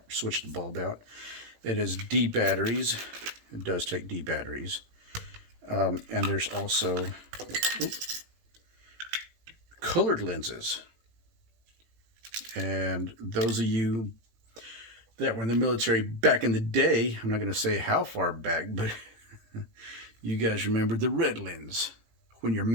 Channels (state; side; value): late; left; 18 ms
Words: switch the bulb out. It is D batteries. It does take D batteries, and there's also colored lenses. And those of you that were in the military back in the day, I'm not going to say how far back, but you guys remember the red lens when you're